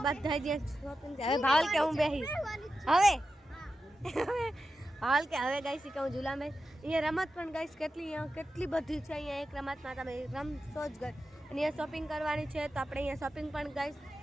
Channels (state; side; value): normal; both; correlation 0.91